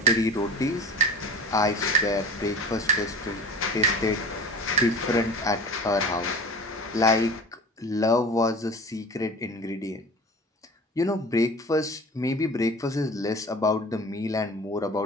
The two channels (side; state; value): both; normal; correlation 0.38